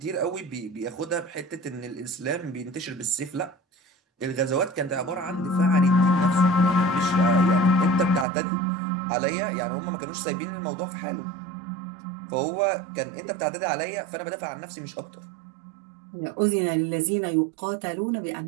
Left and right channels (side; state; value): left; drops out; at 8.2 s